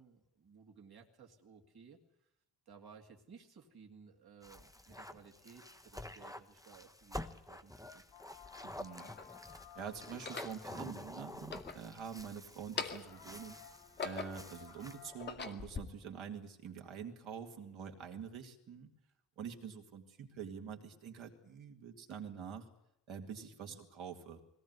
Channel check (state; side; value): normal; both; correlation 0.37